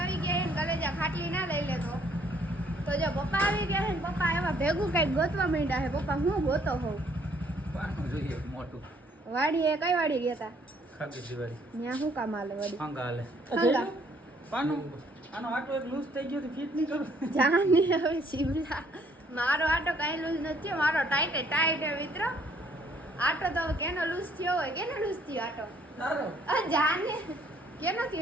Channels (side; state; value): both; normal; correlation 0.64